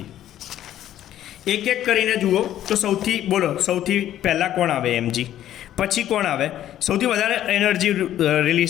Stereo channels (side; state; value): right; quieter; 12.1 dB